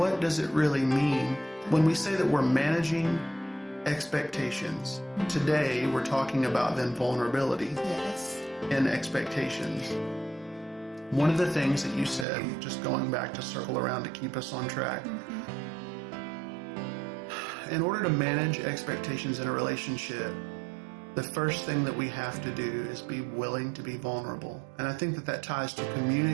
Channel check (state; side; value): drops out; left; at 12.2 s